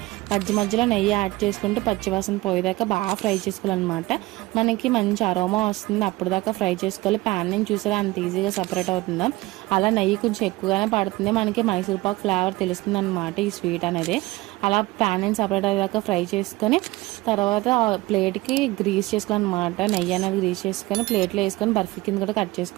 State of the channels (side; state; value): left; quieter; 20.0 dB